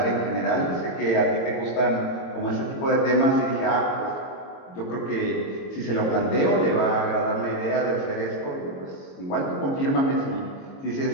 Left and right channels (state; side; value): late; right; 22 ms